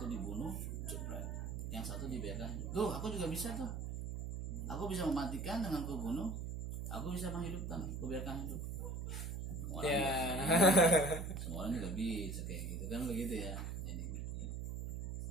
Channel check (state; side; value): noise; right; hum, 4 dB below the sound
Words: dibunuh, yang satu dibiarkan. Tuh, aku juga bisa tuh. Aku bisa mematikan dengan kubunuh. Aku bisa menghidupkan, kubiarkan hidup. Semua orang juga bisa kayak gitu kan, begitu ya. Jadi